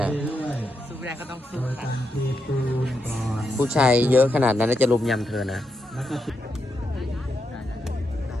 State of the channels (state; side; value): normal; both; correlation 0.83